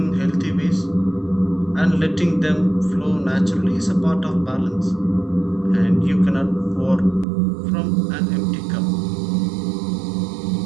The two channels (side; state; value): left; drops out; at 7.2 s